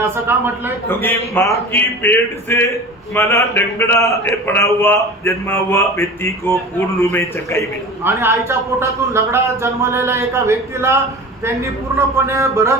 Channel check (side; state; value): both; normal; correlation 0.35